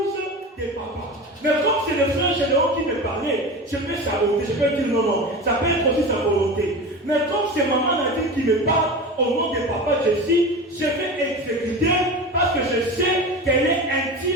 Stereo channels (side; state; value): both; normal; correlation 0.29